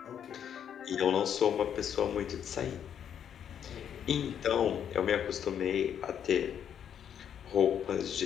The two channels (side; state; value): right; quieter; 8.9 dB